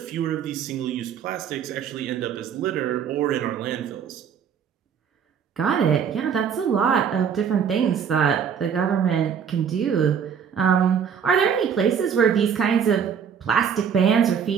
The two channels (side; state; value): left; quieter; 7.5 dB